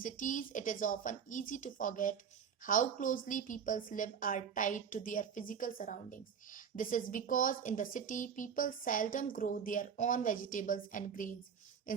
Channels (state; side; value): quieter; left; 7.3 dB